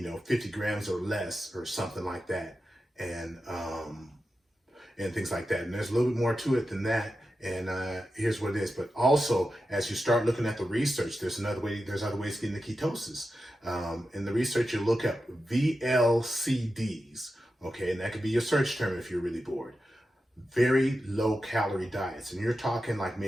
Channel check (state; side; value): normal; both; correlation 0.91